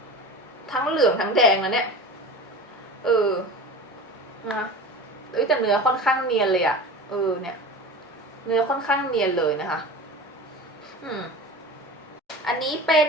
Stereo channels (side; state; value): both; normal; correlation 0.33